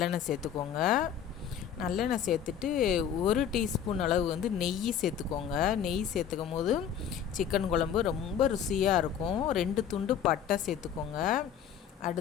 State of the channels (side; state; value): right; quieter; 8.6 dB